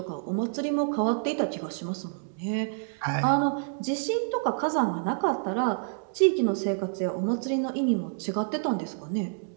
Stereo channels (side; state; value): left; silent; 59 dB below the other